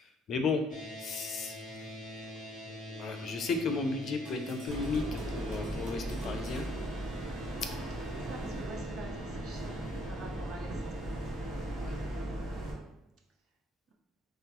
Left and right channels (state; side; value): normal; both; correlation 0.66